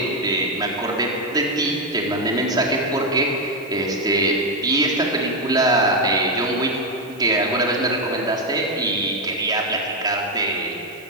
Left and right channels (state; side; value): noise; right; hiss, 26 dB below the sound